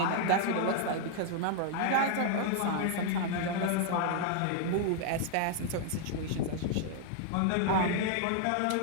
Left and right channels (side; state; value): both; different; correlation 0.00